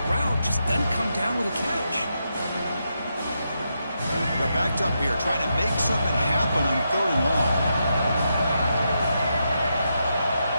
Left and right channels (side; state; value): both; inverted; correlation -0.84